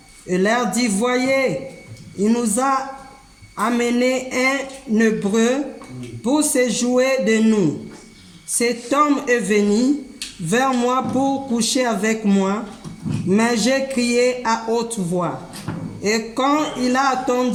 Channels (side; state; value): both; identical; correlation 1.00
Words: et leur dit, voyez, il nous a amené un Hébreu pour se jouer de nous. Cet homme est venu vers moi pour coucher avec moi, mais j'ai crié à haute voix. Et quand il a